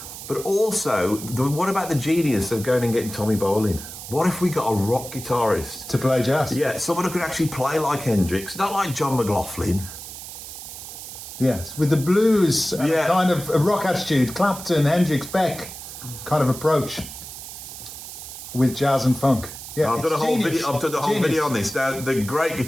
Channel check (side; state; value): right; noise; hiss, 12 dB below the sound